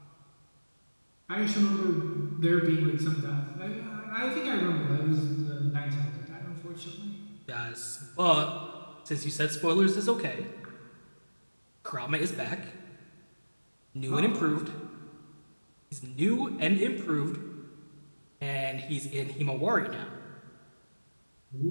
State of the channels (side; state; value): both; inverted; correlation -1.00